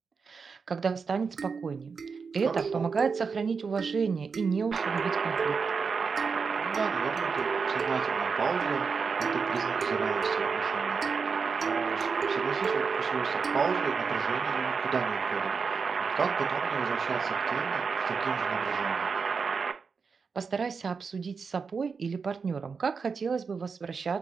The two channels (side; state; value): left; quieter; 5.3 dB